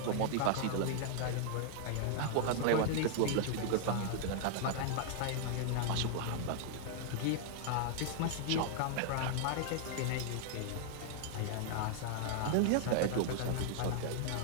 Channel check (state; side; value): different; both; correlation -0.01